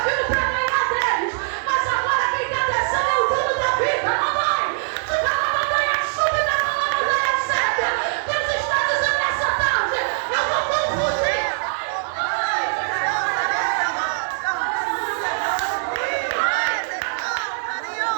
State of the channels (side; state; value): left; silent; digital silence